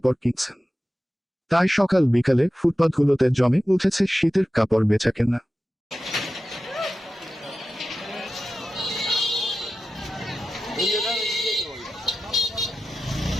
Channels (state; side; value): normal; both; correlation 0.93